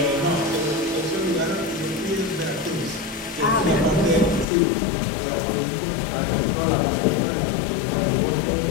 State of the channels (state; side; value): drops out; right; at 4.5 s